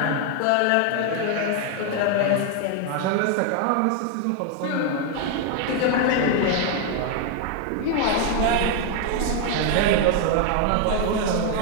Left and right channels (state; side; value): different; both; correlation 0.00